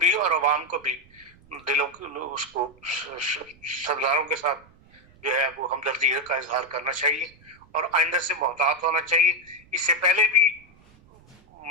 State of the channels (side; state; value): right; noise; rumble, 27 dB below the sound